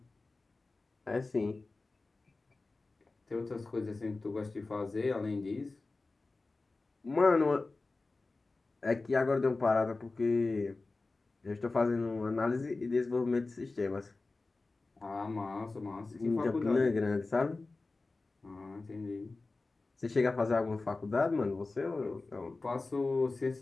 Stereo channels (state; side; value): quieter; right; 3.5 dB